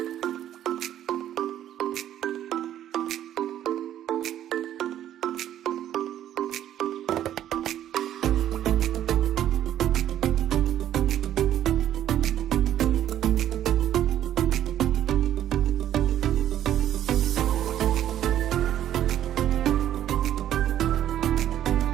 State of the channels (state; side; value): quieter; left; 11.4 dB